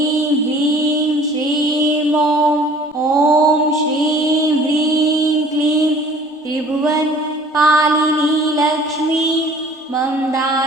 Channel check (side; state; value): both; normal; correlation 0.51